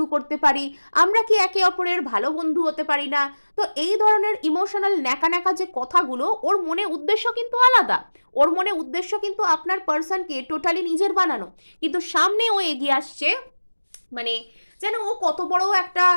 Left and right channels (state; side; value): inverted; both; correlation -1.00